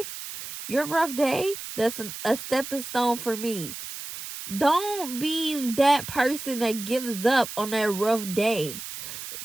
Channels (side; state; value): right; noise; hiss, 9 dB below the sound